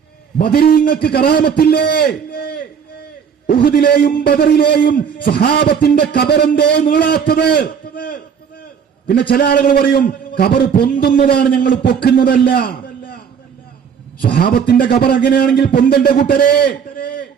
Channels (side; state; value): left; quieter; 7.1 dB